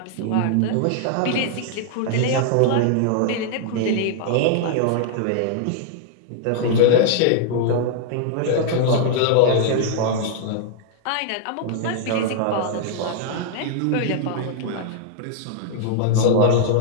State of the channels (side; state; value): both; different; correlation -0.01